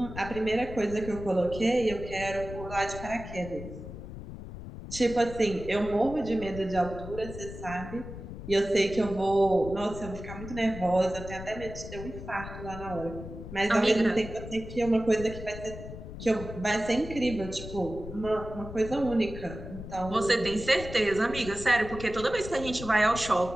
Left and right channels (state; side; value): noise; left; rumble, 11 dB below the sound